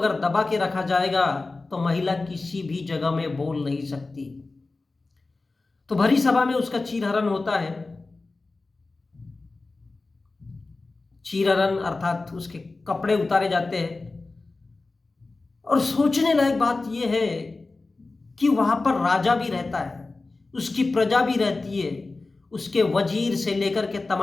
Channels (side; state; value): right; quieter; 3.5 dB